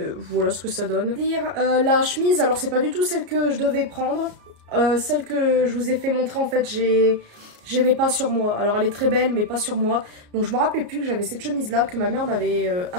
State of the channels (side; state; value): left; late; 34 ms